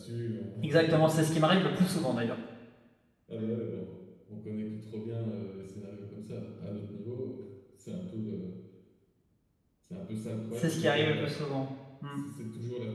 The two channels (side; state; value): both; identical; correlation 1.00